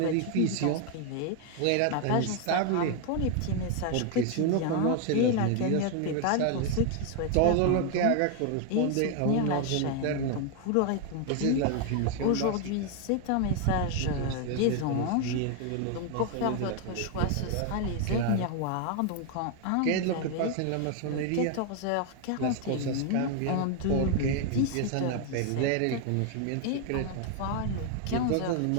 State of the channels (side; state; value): both; different; correlation 0.01